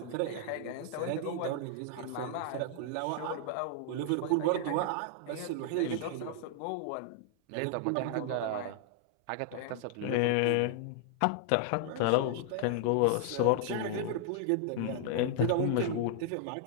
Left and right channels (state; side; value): different; both; correlation -0.01